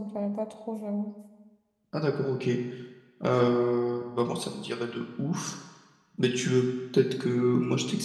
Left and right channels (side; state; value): both; identical; correlation 1.00